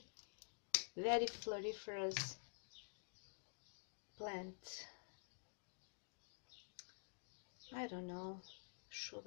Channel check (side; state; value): right; silent; digital silence